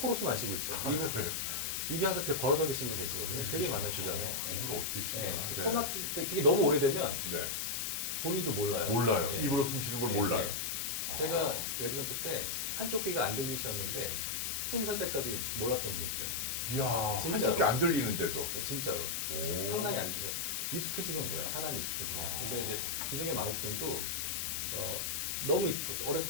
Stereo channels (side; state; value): left; noise; hiss, 1 dB below the sound